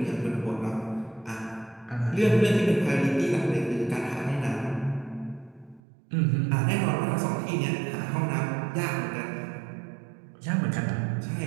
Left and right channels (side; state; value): left; drops out; at 5.8 s